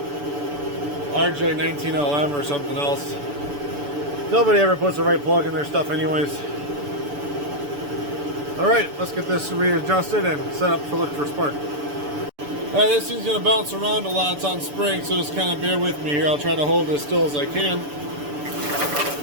RJ19LM or something else. Nobody ever puts the right plug in their stuff anyways. Alright, let's get this readjusted and set up to look for spark. Alright, this thing's going to bounce around a lot. It's on spring, so just kind of bear with me here. I'll try to hold it as still as I can.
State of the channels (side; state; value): left; late; 6.9 ms